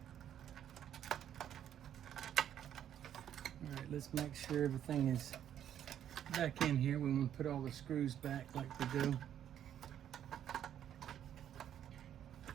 All right, let's make sure everything is back in here. We want to put all the screws back like we do.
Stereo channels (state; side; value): quieter; left; 10.2 dB